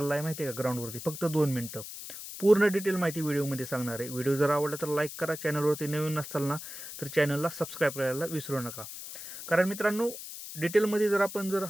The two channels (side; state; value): left; noise; hiss, 10 dB below the sound